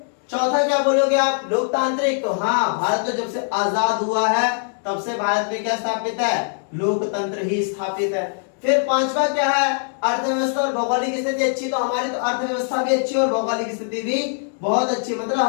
चौथा क्या बोलोगे आप? लोकतांत्रिक। तो हाँ, भारत तो जब से आजाद हुआ है तब से भारत में क्या स्थापित है? लोकतंत्र ही स्थापित है। फिर पांचवा क्या है? अर्थव्यवस्था और भौगोलिक स्थिति अच्छी। तो हमारी तो अर्थव्यवस्था भी अच्छी और भौगोलिक स्थिति भी बहुत अच्छी। मतलब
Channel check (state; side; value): silent; right; digital silence